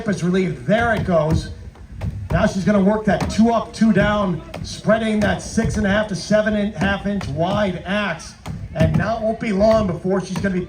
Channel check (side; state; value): both; identical; correlation 1.00